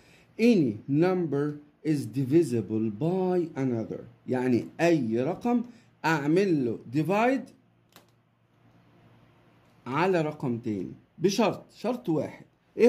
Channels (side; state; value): both; identical; correlation 1.00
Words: any number is divisible by another. يعني أي رقم أعمل له divide على رقم تاني شرط واحد. ايه